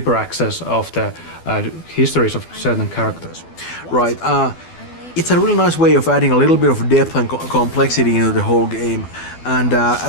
access of the histories of certain characters. Right. It's a really nice way of adding a little bit of depth and complexity into the whole game, and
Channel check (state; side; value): late; right; 12 ms